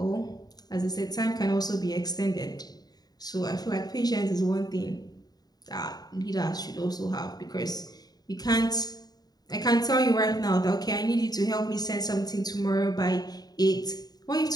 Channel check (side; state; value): right; late; 0.19 ms